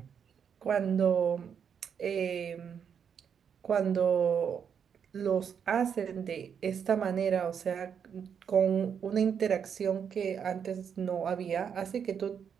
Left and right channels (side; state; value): left; quieter; 7.5 dB